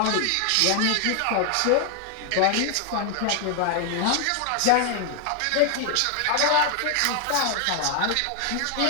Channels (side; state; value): both; different; correlation 0.00